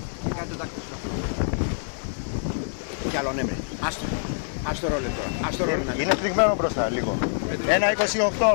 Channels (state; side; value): silent; right; digital silence